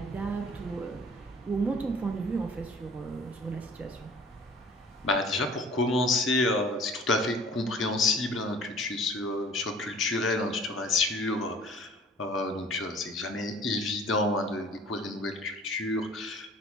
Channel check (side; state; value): both; normal; correlation 0.49